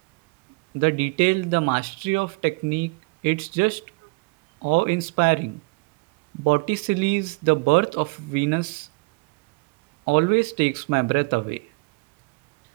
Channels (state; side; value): quieter; left; 28.5 dB